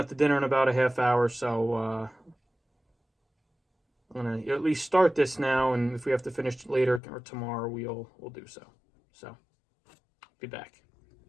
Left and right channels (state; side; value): drops out; right; at 7.0 s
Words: to dinner in about a half hour, so I'm going to at least start this now, and if we have to finish later or tomorrow, we'll do so. So, be back.